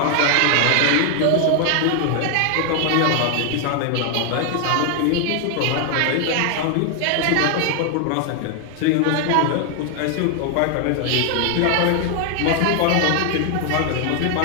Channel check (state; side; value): different; both; correlation 0.00